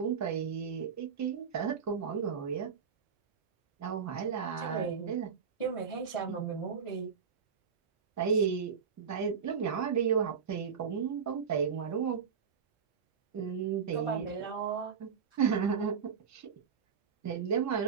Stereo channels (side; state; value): left; quieter; 6.5 dB